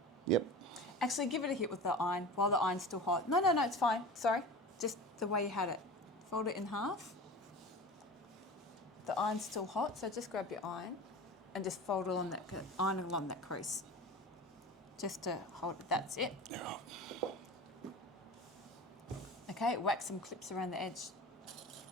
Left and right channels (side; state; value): both; normal; correlation 0.34